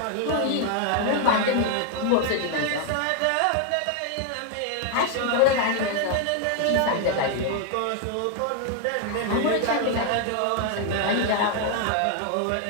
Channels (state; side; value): different; both; correlation 0.00